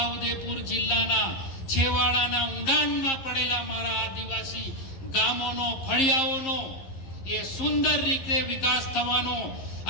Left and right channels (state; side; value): late; right; 11 ms